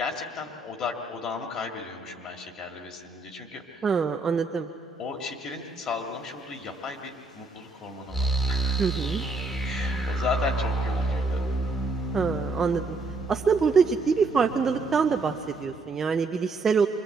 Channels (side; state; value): left; quieter; 3.3 dB